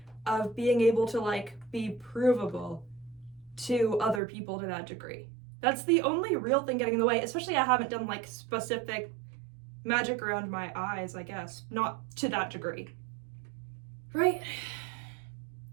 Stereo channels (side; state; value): left; drops out; at 4.2 s